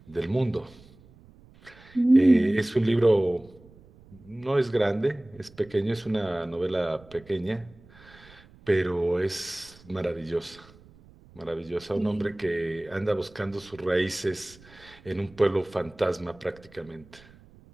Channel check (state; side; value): noise; right; rumble, 25 dB below the sound